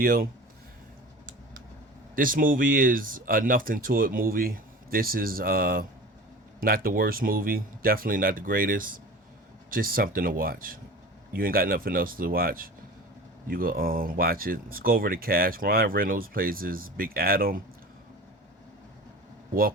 This movie is a nothing to it movie. This is not the worst movie, definitely not the greatest. Just something to watch. You ain't got nothing else to watch. You go watch it. Let's go over the cast. Ryan Reynolds plays as Big Adam.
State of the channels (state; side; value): normal; both; correlation 0.37